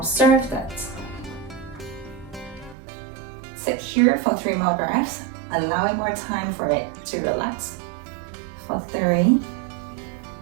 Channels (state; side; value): drops out; left; at 2.8 s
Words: that. Sit here for 3 more breaths, allowing more time for it to relax. For 3,